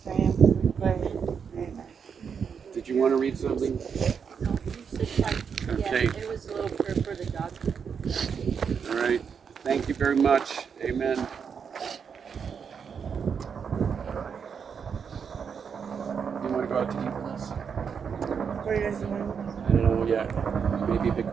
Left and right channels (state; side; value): quieter; left; 6.7 dB